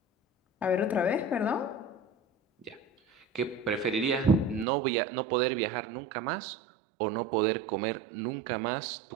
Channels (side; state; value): left; drops out; at 4.7 s